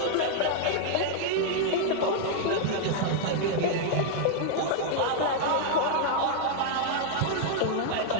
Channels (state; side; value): different; both; correlation -0.01